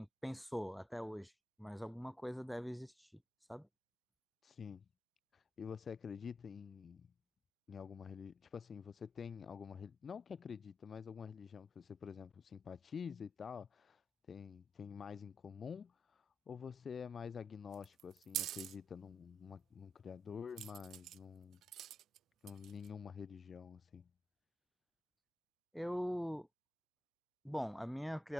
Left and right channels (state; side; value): normal; both; correlation 0.87